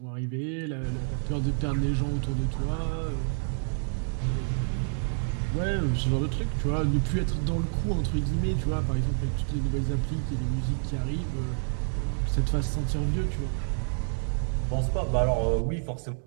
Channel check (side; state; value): left; silent; digital silence